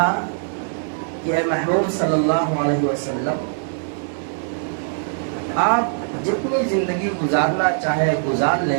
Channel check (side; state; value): left; silent; digital silence